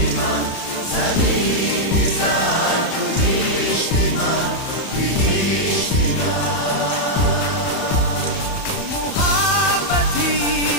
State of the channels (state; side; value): late; right; 31 ms